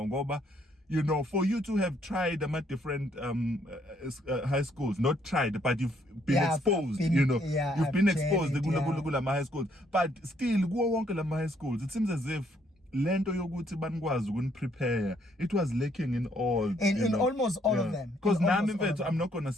ngoba you know, for you to have tried different high schools, not tried, but you've been exposed, you know, you've been exposed to high schools, but still, go on to high schools. It seems as if lento yokuthi banikwazi ukuniprepare, it was lacking in all in almost all of them. Because now I'm not gonna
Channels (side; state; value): both; normal; correlation 0.69